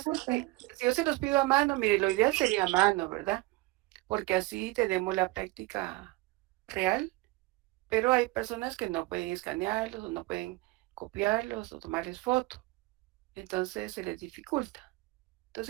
es que si yo se los pido a mano, mire, lo ideal sería a mano, ¿verdad? Porque así tenemos la práctica real, pero hay personas que no pueden escanearlos o no pueden copiarlos o tomarles foto. Entonces se les dificulta.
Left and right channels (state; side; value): quieter; left; 21.5 dB